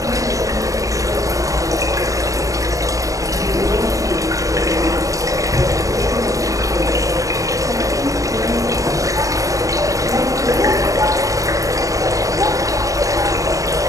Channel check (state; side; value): late; left; 0.16 ms